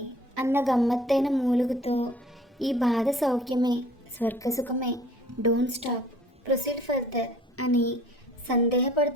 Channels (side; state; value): both; normal; correlation 0.52